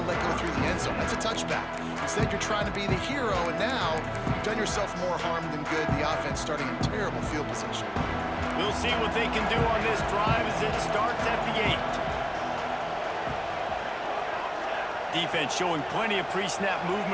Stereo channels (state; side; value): identical; both; correlation 1.00